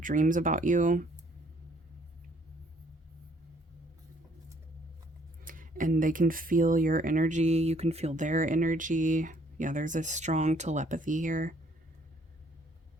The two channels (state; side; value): normal; both; correlation 0.63